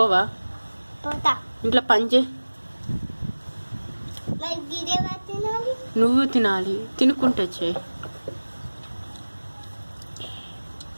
పోతా. ఇంట్లో పని చేయి. మరి గిరేవా తినాలి? నువ్వు తినాలి. తినుకుంటూ చేయి.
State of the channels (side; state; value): both; inverted; correlation -1.00